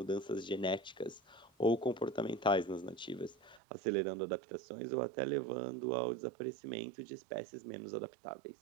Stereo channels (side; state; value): left; drops out; at 3.6 s